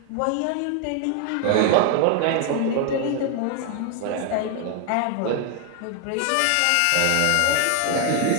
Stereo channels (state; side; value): different; both; correlation 0.00